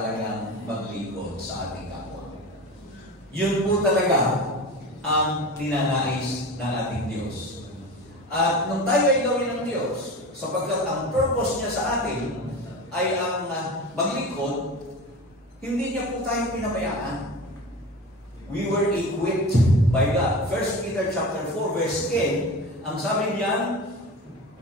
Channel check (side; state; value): both; normal; correlation 0.30